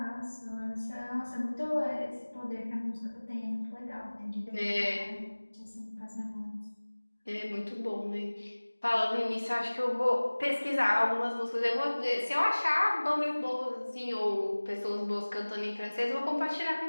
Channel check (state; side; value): inverted; both; correlation -1.00